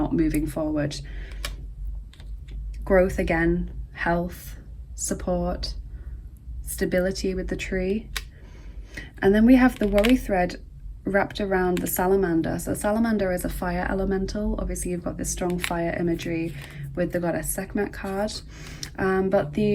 moving forward. Growth again, health, support, stability with the tree. And then we have the worry thread wrapped around the salamander. So salamander is a fire elemental. Obviously you've got this strong fire imagery with the goddess Sekhmet card. But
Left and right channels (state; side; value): identical; both; correlation 1.00